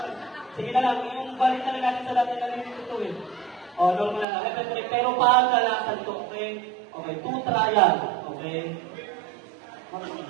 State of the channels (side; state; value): left; drops out; at 4.2 s